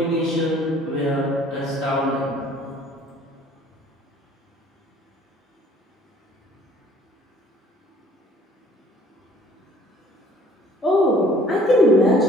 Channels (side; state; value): both; normal; correlation 0.56